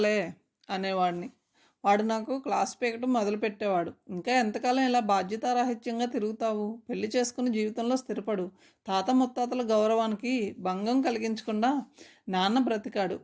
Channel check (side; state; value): both; identical; correlation 1.00